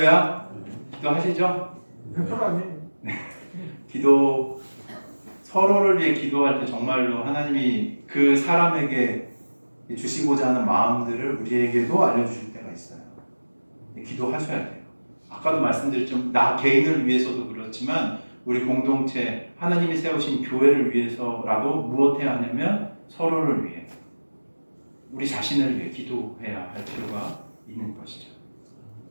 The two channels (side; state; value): both; inverted; correlation -1.00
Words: 기도하시죠? 편하니. 기도 서로를 위해 기도할 때 정말로 하나님이 그 사람에게 주시고자 하는 마음들을 우리에게도 알려주실 때가 있어요. 기도하셔야 돼요. 아까도 말씀드렸지만 나 개인을 위해서도 그렇지만 우리 공동체 하나님이 세우신 교회를 위해서라도 무엇해야 하냐면 서로를 위해 우리 자신을 위해 기도해야 할 필요가 있는 것이죠.